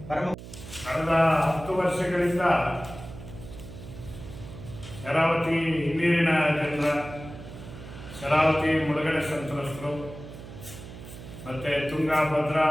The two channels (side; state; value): right; noise; hum, 14 dB below the sound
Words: ಪರಮ ಕಳೆದ 10 ವರ್ಷಗಳಿಂದ ಶರಾವತಿ ಹಿನ್ನೀರಿನ ಜನರ, ಶರಾವತಿ ಮುಳುಗಡೆ ಸಂತ್ರಸ್ತರು, ಮತ್ತು ತುಂಗಾ, ಭದ್ರಾ,